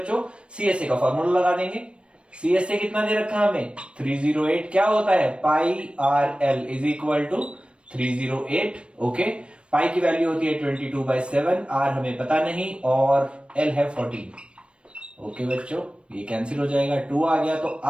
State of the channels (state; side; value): late; left; 0.058 ms